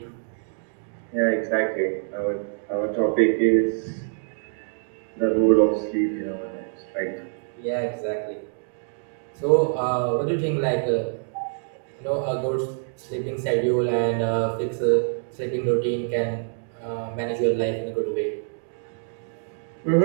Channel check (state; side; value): silent; left; digital silence